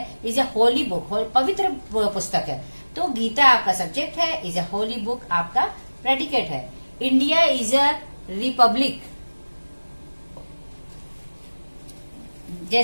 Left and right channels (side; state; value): both; inverted; correlation -1.00